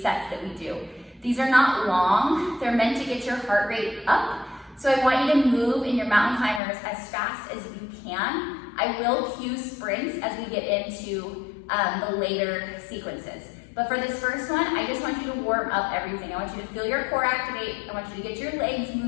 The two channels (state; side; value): drops out; right; at 6.6 s